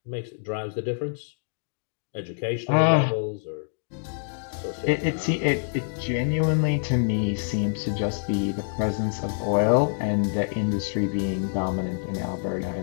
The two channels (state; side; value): silent; right; digital silence